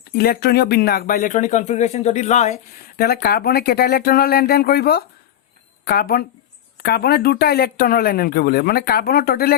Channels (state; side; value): quieter; right; 11.2 dB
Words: ইলেক্ট্ৰনীয় বিন্যাস বা ইলেক্ট্ৰনিক কনফিগাৰেশ্যন যদি লয় তেতিয়াহ'লে কাৰ্বনে কেইটা ইলেক্ট্ৰনৰ লেনদেন কৰিব কাৰ্বনে দুটা ইলেক্ট্ৰনৰ লেনদেন কৰিব লাগিব মানে কাৰ্বনৰ টোটেল